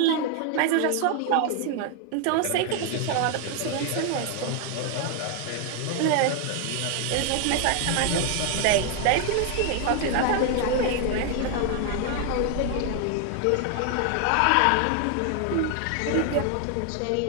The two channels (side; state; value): both; different; correlation 0.00